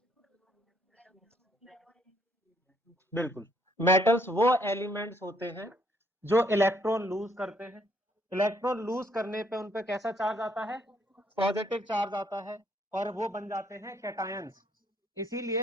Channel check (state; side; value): normal; both; correlation 0.69